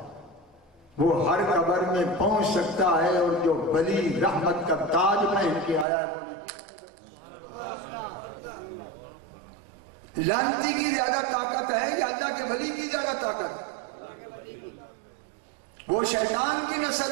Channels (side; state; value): left; drops out; at 5.9 s